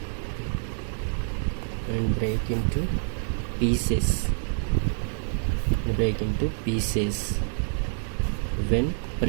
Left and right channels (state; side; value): silent; left; digital silence